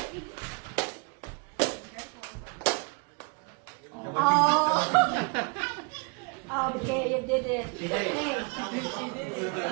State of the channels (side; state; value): left; quieter; 33.3 dB